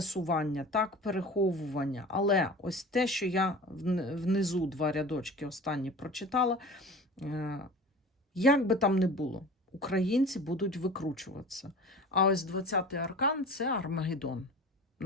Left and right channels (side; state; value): both; normal; correlation 0.38